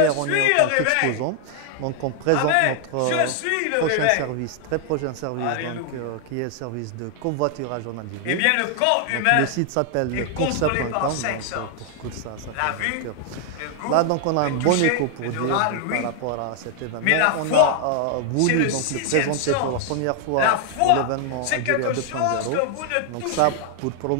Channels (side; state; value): both; different; correlation 0.00